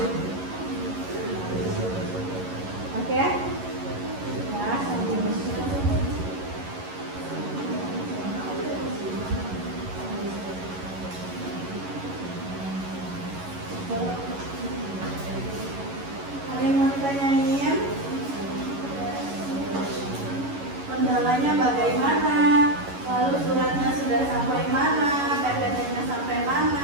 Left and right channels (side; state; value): left; late; 11 ms